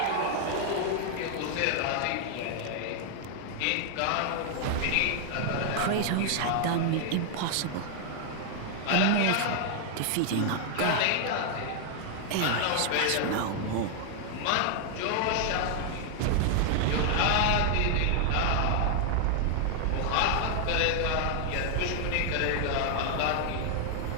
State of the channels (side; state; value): both; different; correlation 0.00